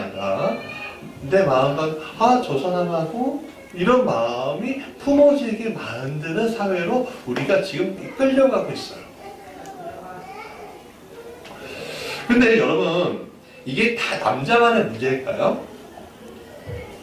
내 마음과 저 사람하고 이런 마음이 품어지게 만드는 사회로 우리가 지금 끌려가고 있어요. 근데 여러분, 이게 다 남자만의 문제일까요?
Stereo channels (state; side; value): identical; both; correlation 1.00